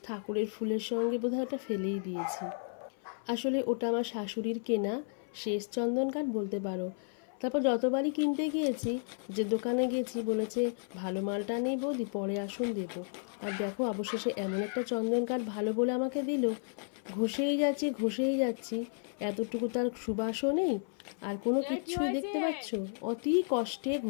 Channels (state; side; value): silent; right; 56 dB below the other